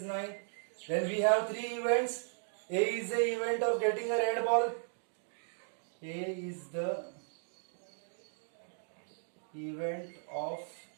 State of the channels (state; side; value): silent; left; digital silence